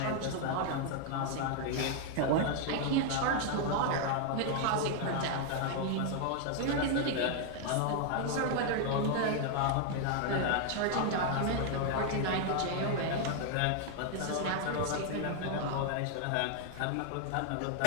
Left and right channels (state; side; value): different; both; correlation 0.00